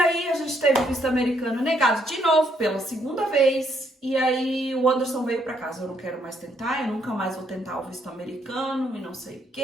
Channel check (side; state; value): both; normal; correlation 0.72